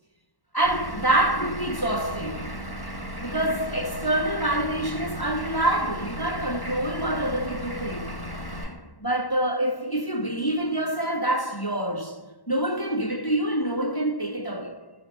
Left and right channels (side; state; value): right; late; 1.1 ms